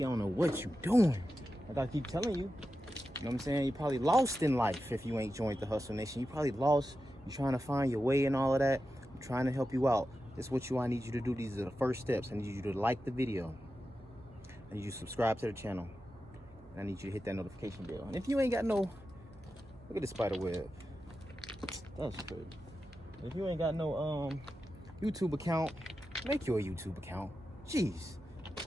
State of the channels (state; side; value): noise; right; hum, 24 dB below the sound